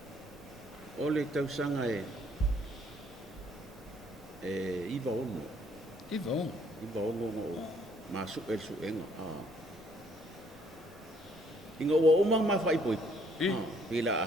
O le tau sanga iwa ono. Iwa ono? Iwa ono ma su enga. Inga ua omang ma whai poi. Pila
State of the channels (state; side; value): normal; both; correlation 0.64